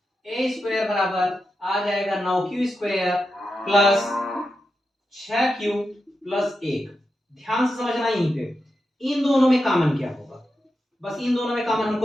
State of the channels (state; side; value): normal; both; correlation 0.89